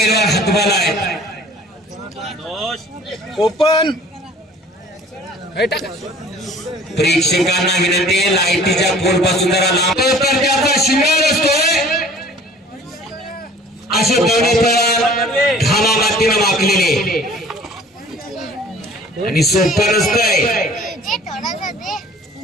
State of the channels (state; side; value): normal; both; correlation 0.50